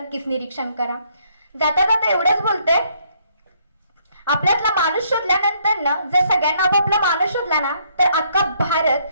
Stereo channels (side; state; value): both; inverted; correlation -0.69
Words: निरीक्षण करा. जाता जाता एवढंच बोलते, आपल्यातला माणूस शोधल्यानंतर ना, जर सगळ्यांना आपापला माणूस शोधला ना, तर अख्खा